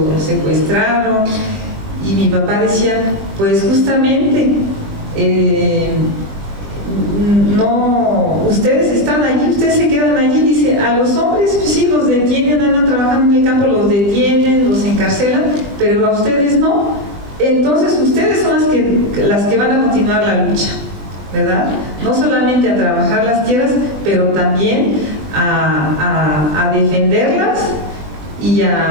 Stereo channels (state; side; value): late; left; 20 ms